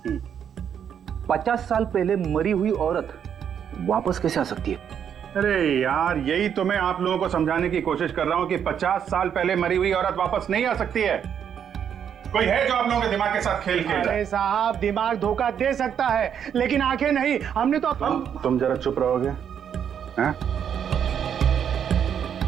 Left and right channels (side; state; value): left; quieter; 8.4 dB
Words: 50 साल पहले मरी हुई औरत वापस कैसे आ सकती है? अरे यार, यही तो मैं आप लोगों को समझाने की कोशिश कर रहा हूं कि 50 साल पहले मरी हुई औरत वापस नहीं आ सकती है। कोई है जो आप लोगों के दिमाग के साथ खेल खेल रहा है? अरे साहब, दिमाग धोखा दे सकता है, लेकिन आंखें नहीं। हमने तो तुम जरा चुप रहोगे? हैं?